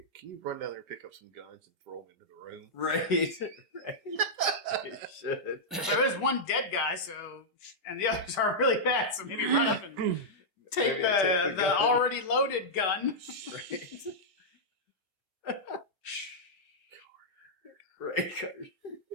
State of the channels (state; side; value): normal; both; correlation -0.09